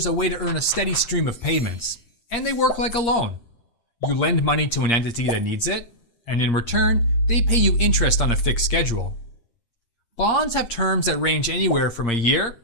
a way to earn a steady stream of payments, and they work like a loan. You lend money to an entity that needs it, and in return, they pay you interest on a fixed schedule. Bonds have terms that range anywhere from a year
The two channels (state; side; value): late; right; 7.8 ms